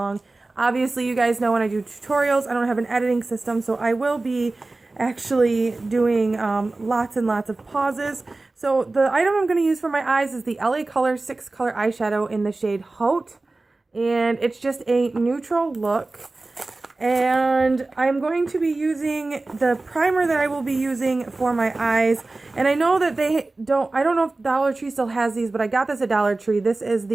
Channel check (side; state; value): left; quieter; 3.2 dB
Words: Obviously, you guys know when I do tutorials, I don't have an editing system, so I will be actually doing lots and lots of pauses. So the item I'm going to use for my eyes is the LA Color 6 color eyeshadow in the shade Haute, and it's just a neutral look. And I'm going to be using the primer that I will be using for my eyes. And I know that I don't know if Dollar Tree still has these, but I got this at Dollar Tree. This is